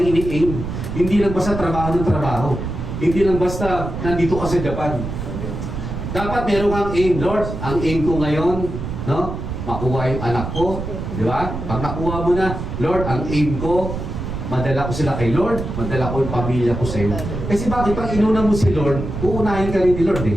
ini-aim. Hindi lang basta trabaho ng trabaho. Hindi lang basta nandito ka sa Japan. Dapat meron kang aim, Lord. Ang aim ko ngayon, no? Makuha yung anak ko. Di ba? Pag nakuha mo na, Lord, ang aim ko, madala ko sila kay Lord, madala ko yung pamilya ko sa iyo. Kasi bakit? Pag inuna mo si Lord, uunahin ka rin ni Lord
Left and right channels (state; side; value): noise; right; rumble, 6 dB below the sound